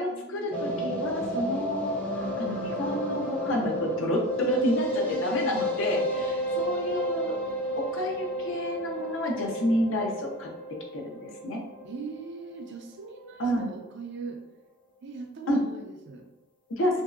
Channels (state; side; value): normal; both; correlation 0.32